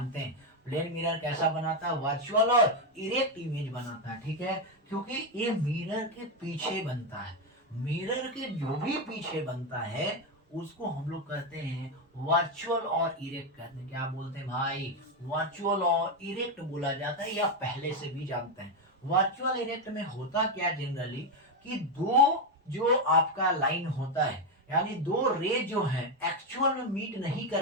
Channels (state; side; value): normal; both; correlation 0.07